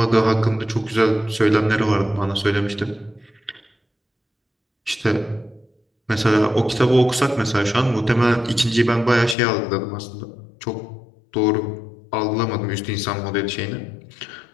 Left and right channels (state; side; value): drops out; right; at 9.3 s